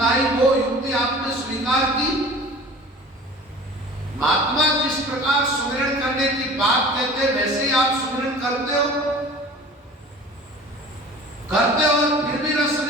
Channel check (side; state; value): both; normal; correlation 0.42